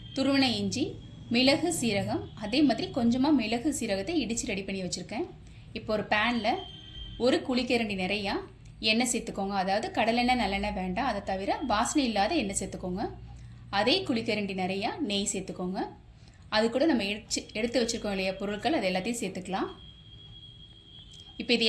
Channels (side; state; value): both; identical; correlation 1.00